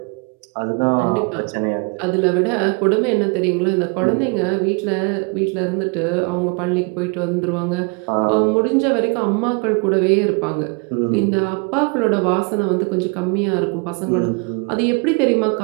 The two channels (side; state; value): left; quieter; 32.2 dB